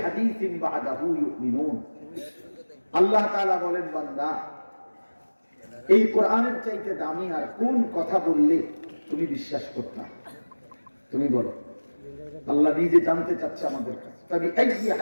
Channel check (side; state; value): both; inverted; correlation -1.00